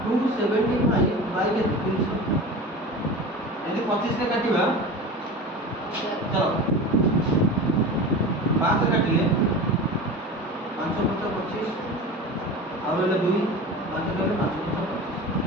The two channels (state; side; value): normal; both; correlation 0.32